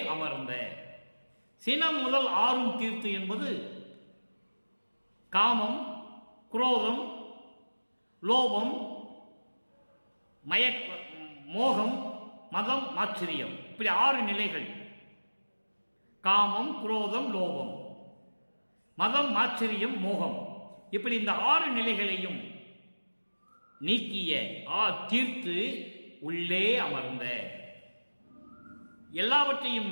அமர்ந்த. சினம் முதல் ஆறும் தீர்த்து என்பது காமம், குரோதம், லோபம், மோகம், மதம், ஆச்சரியம், இப்படி 6 நிலைகள். காமம், குரோதம், லோபம், மதம், ஆச்சரியம், மோகம், இப்படி இந்த 6 நிலைகளையும் நீக்கிய, தீர்த்து உள்ளே அமர்ந்த, எல்லாவற்றையும்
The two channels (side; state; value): both; inverted; correlation -1.00